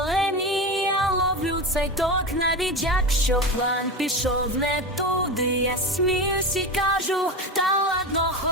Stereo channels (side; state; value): both; normal; correlation 0.23